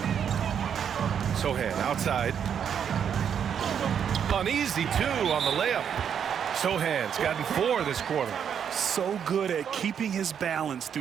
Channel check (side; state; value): left; quieter; 8.1 dB